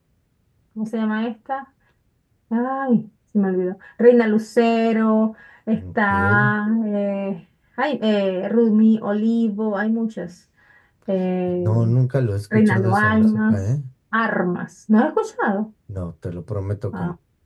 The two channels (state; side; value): identical; both; correlation 1.00